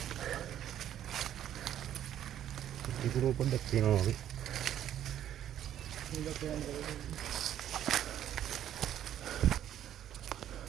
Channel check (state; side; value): quieter; left; 11.0 dB